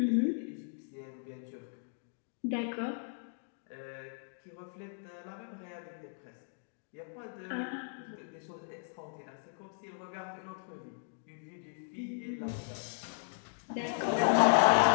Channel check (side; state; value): right; silent; digital silence